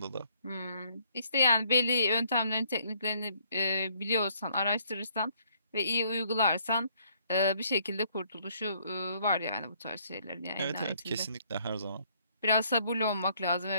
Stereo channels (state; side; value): inverted; both; correlation -0.66